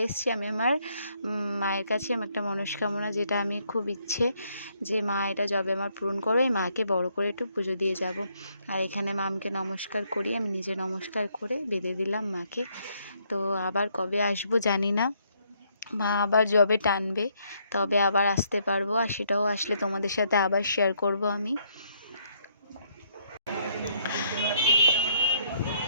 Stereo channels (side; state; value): both; inverted; correlation -0.72